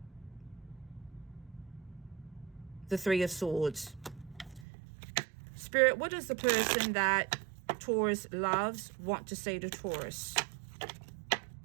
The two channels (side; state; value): left; drops out; at 4.7 s